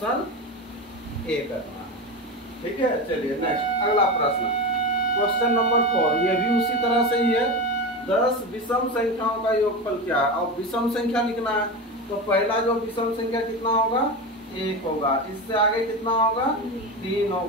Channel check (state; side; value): normal; both; correlation 0.22